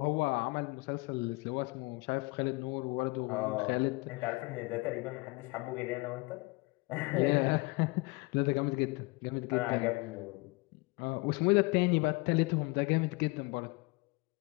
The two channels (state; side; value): quieter; right; 26.1 dB